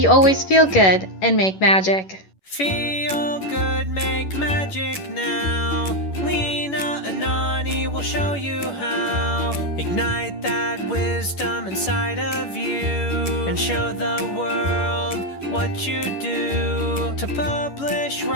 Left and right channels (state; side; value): late; right; 11 ms